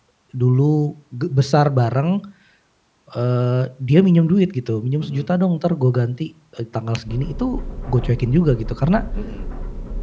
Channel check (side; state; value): both; identical; correlation 1.00